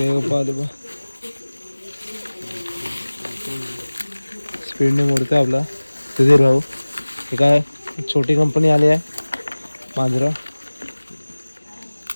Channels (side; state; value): both; inverted; correlation -1.00